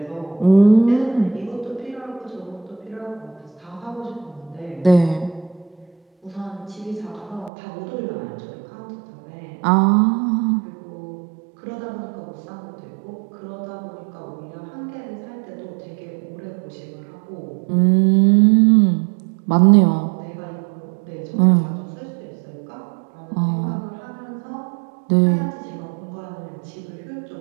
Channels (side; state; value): left; drops out; at 7.5 s